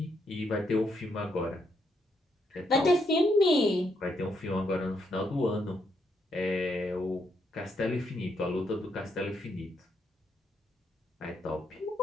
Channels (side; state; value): both; normal; correlation 0.78